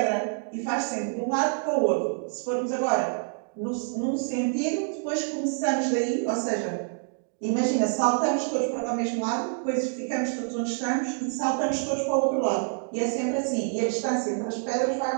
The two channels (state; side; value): silent; left; digital silence